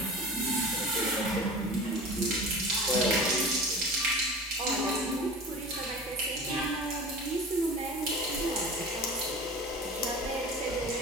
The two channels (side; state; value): both; normal; correlation 0.36